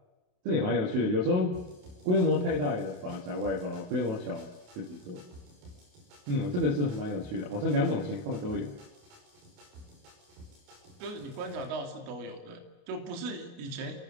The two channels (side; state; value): left; late; 28 ms